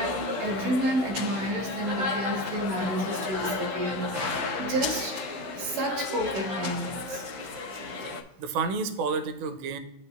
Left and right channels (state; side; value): late; left; 16 ms